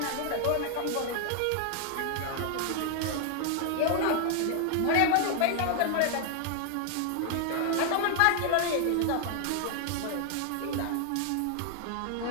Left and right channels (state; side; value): different; both; correlation 0.00